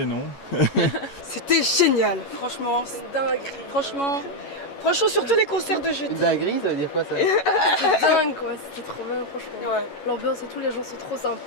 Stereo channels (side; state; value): right; late; 11 ms